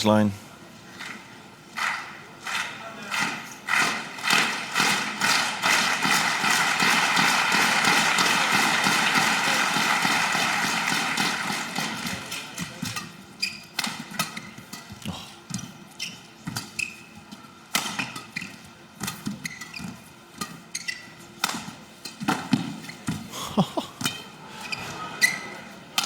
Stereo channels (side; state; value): both; identical; correlation 1.00